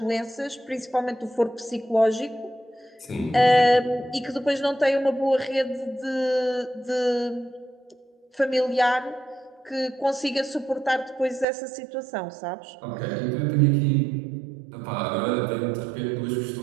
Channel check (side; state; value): left; drops out; at 11.5 s